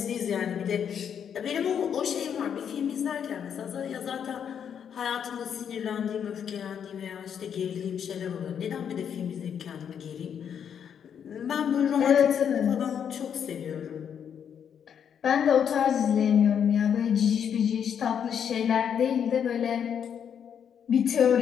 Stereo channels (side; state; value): right; quieter; 8.1 dB